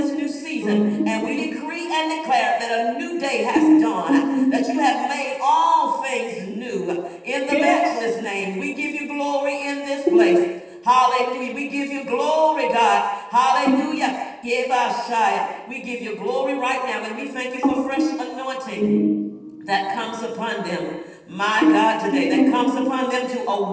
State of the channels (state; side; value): identical; both; correlation 1.00